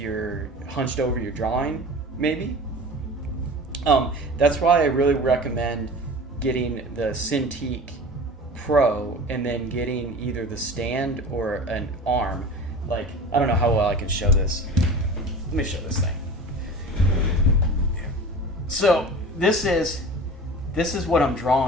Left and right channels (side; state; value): both; normal; correlation 0.37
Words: hunched over your drawing, maybe. That's why I really recommend getting the Cintiq Pro and then getting either the stand or an arm. Like, I don't know how well I can show this. Let me show this thing. So this is what I'm